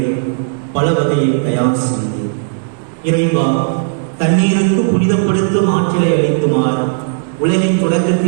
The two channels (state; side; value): silent; left; digital silence